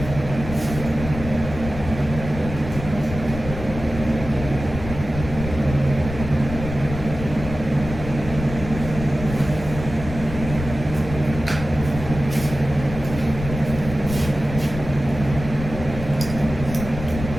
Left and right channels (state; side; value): noise; left; rumble, 8 dB below the sound